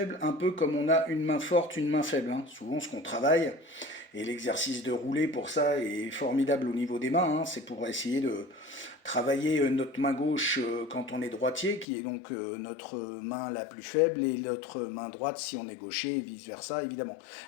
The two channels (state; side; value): drops out; right; at 11.9 s